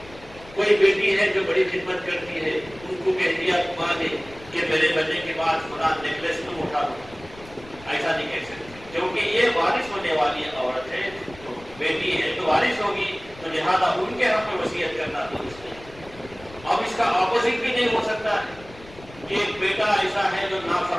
کوئی بیٹی ہے جو بڑی خدمت کرتی ہے, ان کو کہہ دیا ماں نے کہ میرے بچے کے بعد خدا نیکلیس تم اٹھا دو, ایسا نہیں کہہ سکتے کیونکہ یہ وارث ہونے والی عورت ہے, تو بیٹی ہے تو وارث ہوگی, تو لہٰذا ان کے حق میں وصیت کرنا درست نہیں. اب اس کا اپوزٹ بھی نہیں ہو سکتا ہے کہ ایک بیٹا ایسا ہے جو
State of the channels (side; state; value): left; noise; rumble, 20 dB below the sound